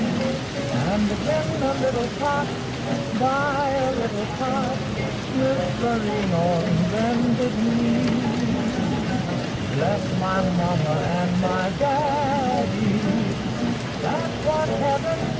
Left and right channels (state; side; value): identical; both; correlation 1.00